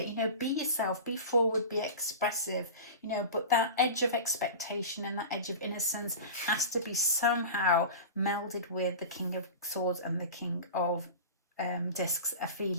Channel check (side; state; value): both; inverted; correlation -0.31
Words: You know, be yourself, be forward, be expressive. You know, but that edge of expectation and that edge of innocence has to be somehow melded with the King of Swords and the King of Discs. A